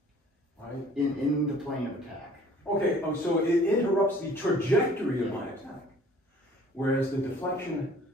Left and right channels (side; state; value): both; normal; correlation 0.53